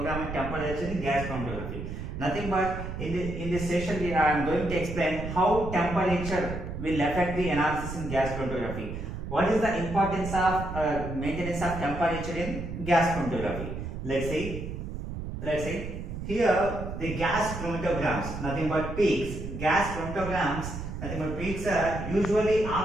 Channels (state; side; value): noise; right; rumble, 7 dB below the sound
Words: temperature in gas chromatography. Nothing but in this session, I am going to explain how temperature will affect the analysis in gas chromatography. What is the importance of maintenance of temperature in gas chromatography? Let's see. Here the gas chromatograms, nothing but peaks. Gas chromatograms, nothing but peaks are usually